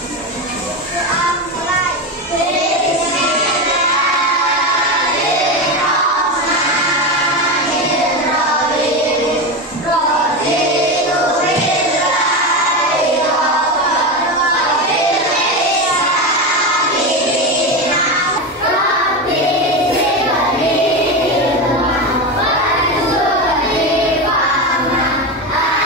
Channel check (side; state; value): both; normal; correlation 0.17